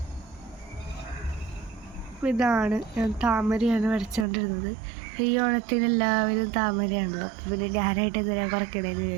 ഇതാണ് ഞാൻ താമരയാണ് വരച്ചുകൊണ്ടിരുന്നത്. ഈ ഓണത്തിന് എല്ലാവരും താമരയാണല്ലോ, അപ്പോൾ പിന്നെ ഞാനായിട്ട് എന്തിനാ കുറയ്ക്കണേന്ന്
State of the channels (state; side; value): drops out; left; at 4.2 s